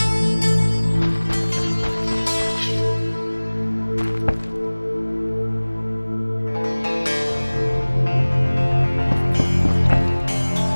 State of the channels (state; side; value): inverted; both; correlation -1.00